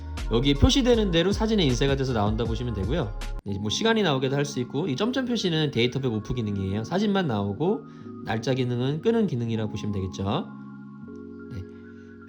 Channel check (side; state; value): both; identical; correlation 1.00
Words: 여기 표시되는 대로 사진에 인쇄가 돼서 나온다 보시면 되고요. 뭐 시간이 나오게도 할 수 있고, 이 점점 표시는 데이터백 오프 기능이에요. 사진만 나오고 날짜 기능은 끄는 기능이라고 보시면 되겠죠. 네.